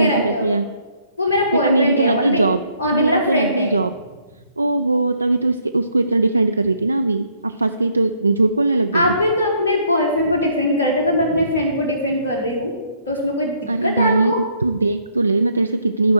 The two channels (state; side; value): inverted; both; correlation -0.68